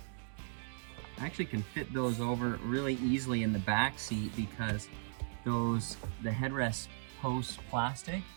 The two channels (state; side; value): silent; left; digital silence